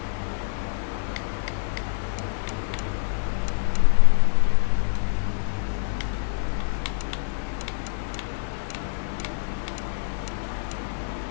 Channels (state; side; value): silent; right; 61 dB below the other